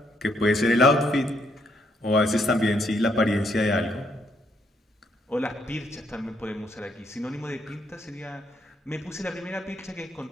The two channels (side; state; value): both; normal; correlation 0.73